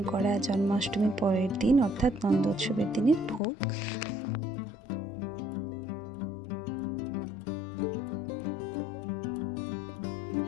করা জন্মাষ্টমীর পরের দিন অর্থাৎ নন্দোৎসবের দিনের ভোগ।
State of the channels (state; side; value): drops out; right; at 3.4 s